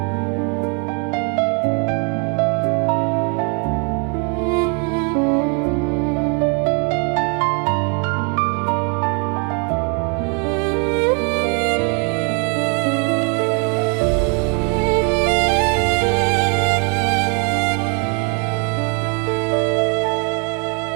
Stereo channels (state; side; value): quieter; left; 36.7 dB